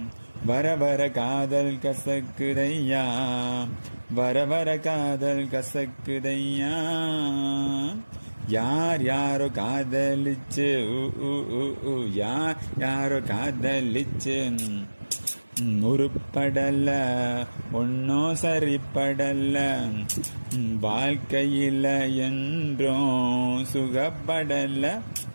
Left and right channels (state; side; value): inverted; both; correlation -1.00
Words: வர வர காதல் கசக்குதையா வர வர காதல் கசக்குதையா யார் யாரோ காதலிச்சு யார் யாரோ காதலிச்சு உருப்படல ஒன்னும் சரிப்படல வாழ்க்கையில என்றும் சுகப்படல